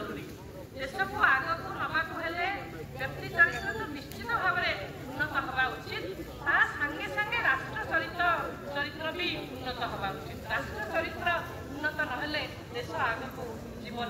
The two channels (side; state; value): both; identical; correlation 1.00